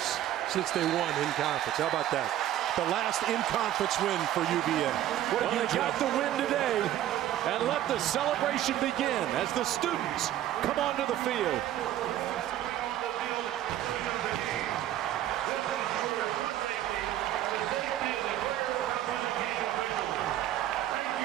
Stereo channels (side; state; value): left; quieter; 12.5 dB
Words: since they won in conference. How about that? The last in-conference win for UVA. Well, they got the win today, and let the celebration begin as the students come onto the field.